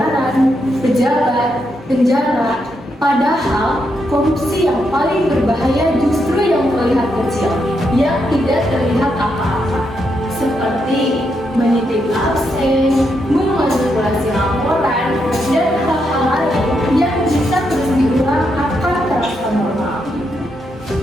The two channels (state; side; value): normal; both; correlation 0.81